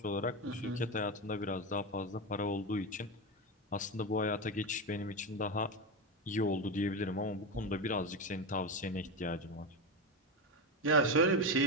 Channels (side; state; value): both; normal; correlation 0.15